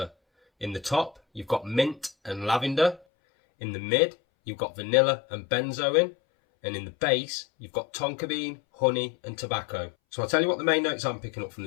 In the top, you've got mint and lavender. In the mid, you've got vanilla and benzoin. And in the base, you've got tonka bean, honey and tobacco. So I'll tell you what the main notes I'm picking up from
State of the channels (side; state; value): right; drops out; at 3.0 s